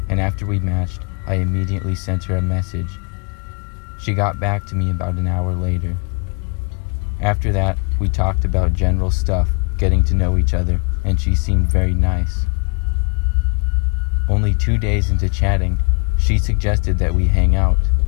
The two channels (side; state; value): right; quieter; 34.7 dB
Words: and after we matched, I immediately sent her a message. She got back to me about an hour later. After that, we talked about general stuff, getting to know each other, and she seemed very nice. Only 2 days into chatting, she suggested that we hang out.